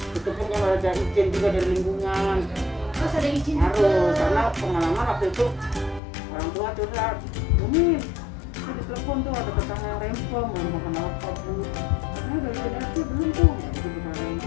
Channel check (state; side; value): drops out; right; at 6.0 s